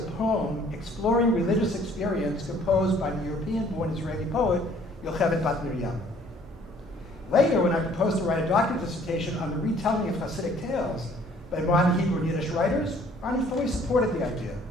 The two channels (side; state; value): both; normal; correlation 0.58